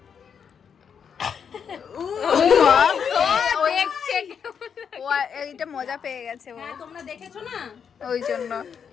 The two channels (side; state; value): right; quieter; 7.1 dB